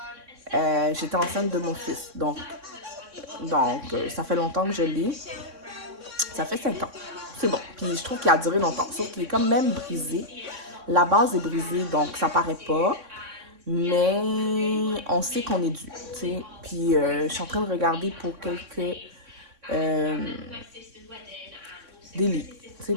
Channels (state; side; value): late; left; 3.6 ms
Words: J'étais enceinte de mon fils. Donc, ça fait longtemps que je l'ai. Ça fait 5 ans. C'est bon. Puis je trouve qu'il a duré longtemps. Sauf qu'il est quand même brisé. La base est brisée, donc ça paraît pas. Mais on sait qu'on est dû. T'sais. Puis je suis en train de regarder pour quelques... des lits.